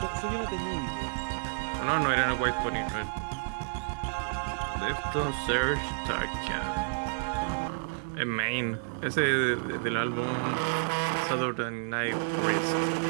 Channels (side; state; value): left; silent; digital silence